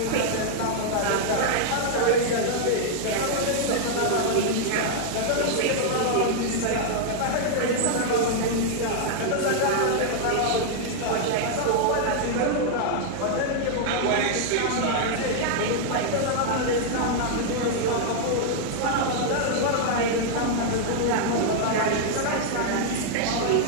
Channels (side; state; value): both; different; correlation -0.01